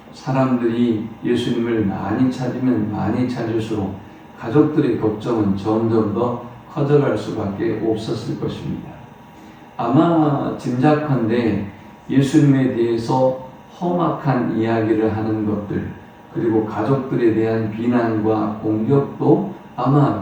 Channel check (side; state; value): both; identical; correlation 1.00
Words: 사람들이 예수님을 많이 찾으면 많이 찾을수록 가족들의 걱정은 점점 더 커져갈 수밖에 없었을 것입니다. 아마 짐작컨대 예수님에 대해서 험악한 이야기를 하는 것들 그리고 가족들에 대한 비난과 공격도